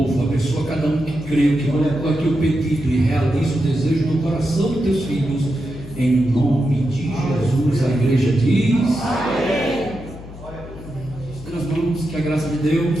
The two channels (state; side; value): noise; left; hum, 15 dB below the sound